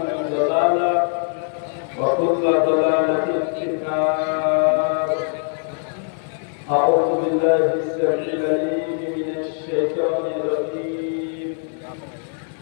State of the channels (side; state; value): right; silent; 64 dB below the other